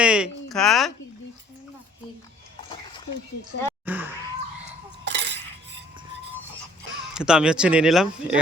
খা। তো আমি হচ্ছে নিয়ে নিলাম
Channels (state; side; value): normal; both; correlation 0.57